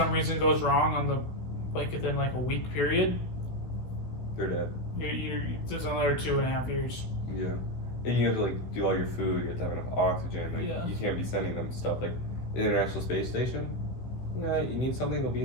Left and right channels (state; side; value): late; right; 16 ms